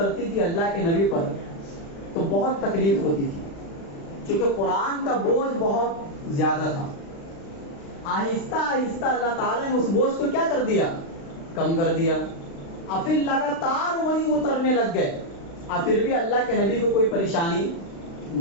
تھی اللہ کے نبی پر تو بہت تکلیف ہوتی تھی، چونکہ قرآن کا بوجھ بہت زیادہ تھا۔ آہستہ آہستہ اللہ تعالیٰ نے اس بوجھ کو کیا کر دیا؟ کم کر دیا۔ اور پھر لگاتار وہی اترنے لگ گئے، اور پھر بھی اللہ کے نبی کو کوئی پریشانی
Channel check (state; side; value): late; right; 36 ms